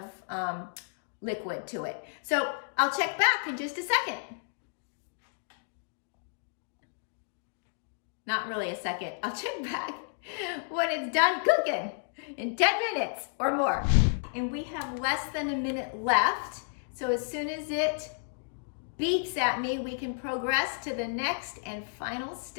liquid to it. So I'll check back in just a second. Not really a second. I'll check back when it's done cooking in 10 minutes or more. And we have less than a minute left. So as soon as it beeps at me, we can progress to the next and final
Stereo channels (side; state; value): right; silent; digital silence